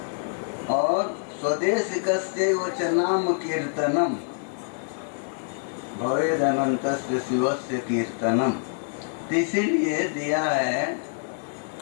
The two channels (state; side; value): silent; right; digital silence